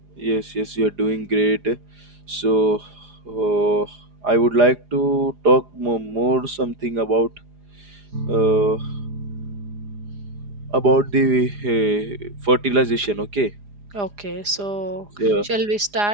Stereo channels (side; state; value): left; late; 4.9 ms